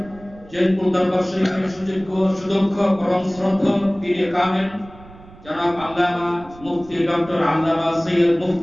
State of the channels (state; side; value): noise; right; rumble, 21 dB below the sound